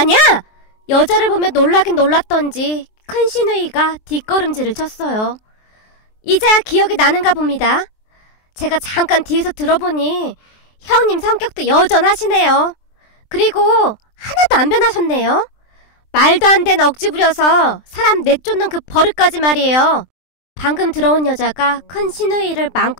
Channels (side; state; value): right; late; 23 ms